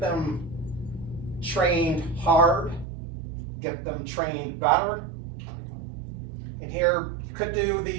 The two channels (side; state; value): left; drops out; at 2.9 s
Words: trained hard, get them trained better, and here you could do